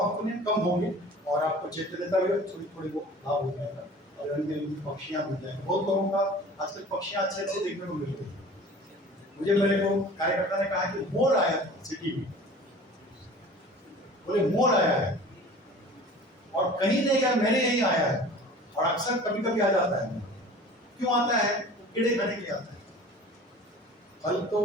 होने कम होंगे, और आपको चैतन्यता भी थोड़ी थोड़ी वो लाभ हो जाएगा, और रंग बिरंगी पक्षियां मिल जाएंगी। बहुत लोगों का आजकल पक्षियां अच्छे अच्छे देखने को मिल रही है। मुझे मेरे को कार्यकर्ता ने कहा कि मोर आया था सिटी में, बोले मोर आया है, और कहीं नहीं गया, मैंने यही आया है, और अक्सर कभी कभी आ जाता है। क्यों आता है? कीड़े खाने के लिए आता है। फल तो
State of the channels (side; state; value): both; normal; correlation 0.43